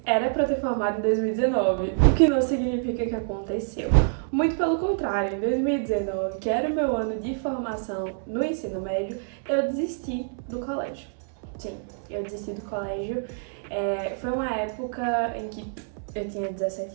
era pra eu ter formado em 2019, o que não significa que aconteceu. Muito pelo contrário, em 2019, que era o meu ano de formação no ensino médio, eu desisti do colégio. Sim, eu desisti do colégio. Foi uma época em que eu tinha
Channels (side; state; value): left; silent; digital silence